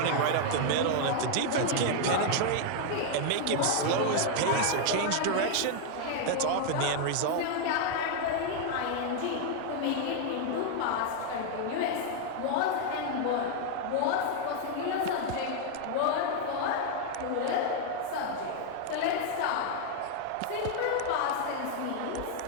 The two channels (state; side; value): different; both; correlation 0.00